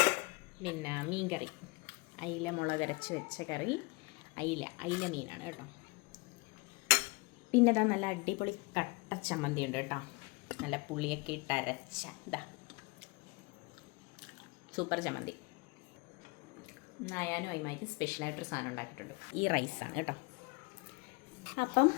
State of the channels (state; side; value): quieter; right; 26.8 dB